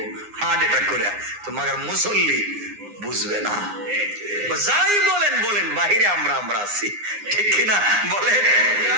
হার্ট অ্যাটাক করে, তো মাগার মুসল্লি বুঝবে না। যাই বলেন বলেন, বাহিরে আমরা আছি, ঠিক কিনা বলেন?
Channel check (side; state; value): left; late; 9.7 ms